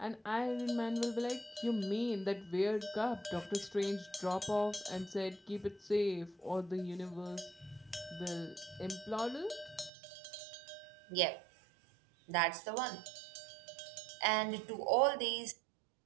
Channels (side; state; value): left; drops out; at 9.9 s